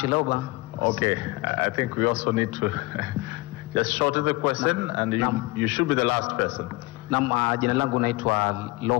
Okay, I think we also need to just shorten the question, and you should be the last person. Jina langu naitwa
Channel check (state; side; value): quieter; right; 22.3 dB